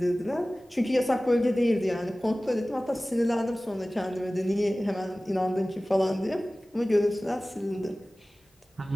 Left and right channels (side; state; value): both; normal; correlation 0.97